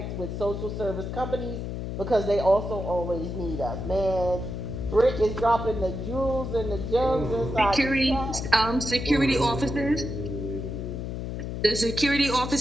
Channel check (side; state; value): left; noise; hum, 5 dB below the sound